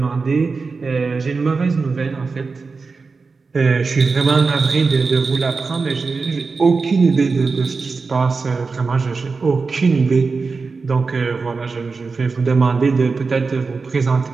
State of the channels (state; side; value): quieter; left; 4.4 dB